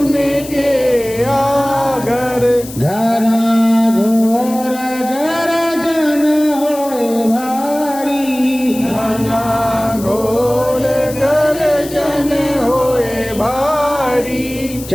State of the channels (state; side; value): noise; left; hiss, 14 dB below the sound